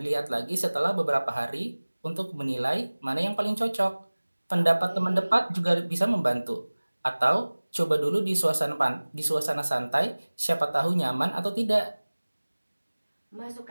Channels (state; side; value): inverted; both; correlation -1.00